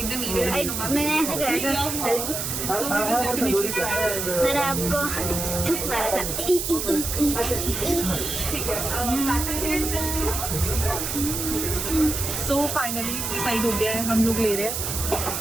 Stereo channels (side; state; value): right; noise; hiss, 3 dB below the sound